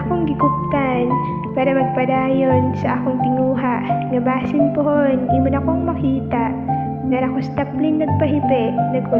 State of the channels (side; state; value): both; identical; correlation 1.00